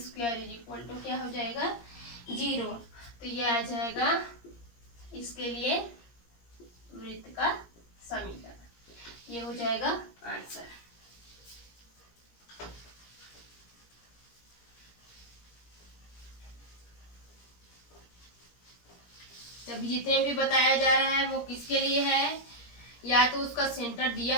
क्या हो जाएगा 0। तो ये आ जाएगा इसके लिए वृत्त का समीकरण, ये हो जाएगा आंसर। अभी जितने भी बताया जा रहा है वो किसके लिए है, या तो उसका सेंटर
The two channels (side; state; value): right; late; 17 ms